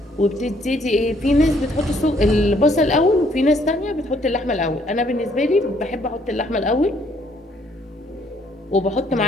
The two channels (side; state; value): both; normal; correlation 0.66